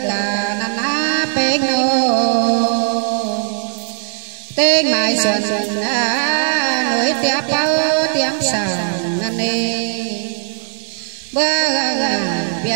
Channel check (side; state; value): left; silent; digital silence